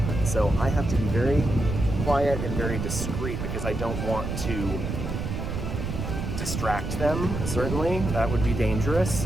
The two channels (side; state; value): right; noise; rumble, 4 dB below the sound